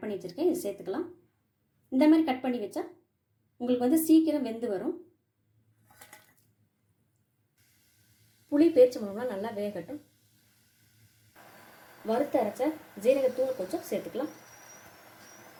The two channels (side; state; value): both; identical; correlation 1.00